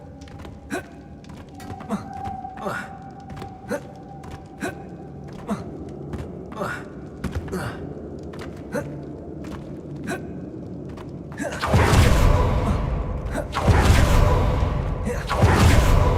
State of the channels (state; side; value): identical; both; correlation 1.00